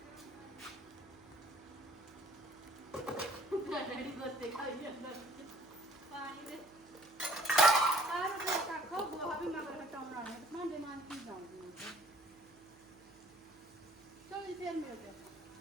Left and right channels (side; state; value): right; noise; hum, 28 dB below the sound